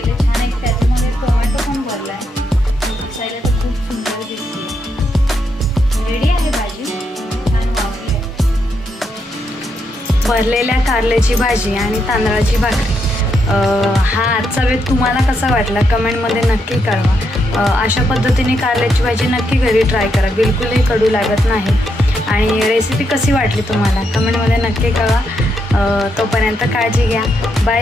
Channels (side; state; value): both; normal; correlation 0.80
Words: छान. एक त्याच्यामध्ये टोमॅटो पण भरला आहे. दिसायला तर खूप सुंदर दिसते. रेडी आहे भाजी. छान वाफली. भरलेल्या कारल्याची भाजी आणि तांदळाची भाकरी. हा आजचा वेळ तुम्हाला कसा वाटला कमेंटमध्ये नक्की कळवा. अशा पद्धतीने कारल्याची भाजी नक्की घरी ट्राय करा. बिलकुलही कडू लागत नाही. आणि रेसिपी कशी वाटली तुम्हाला कमेंटमध्ये नक्की कळवा. तोपर्यंत काळजी घ्या.